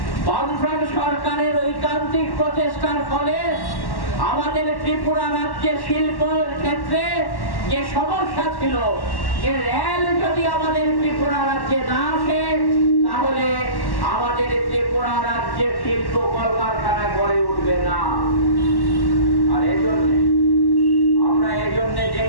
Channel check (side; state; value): right; late; 1.1 ms